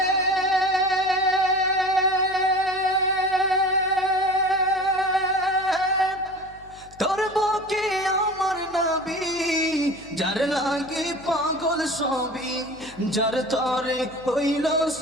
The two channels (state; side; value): noise; left; hum, 23 dB below the sound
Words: তোর বুকে আমার নবী, যার লাগে পাগল সবই, যার তরে হইল